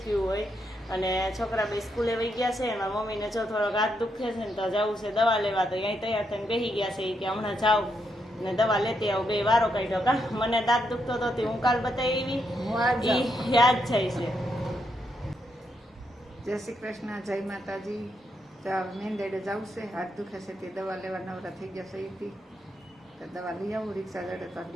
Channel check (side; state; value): both; normal; correlation 0.80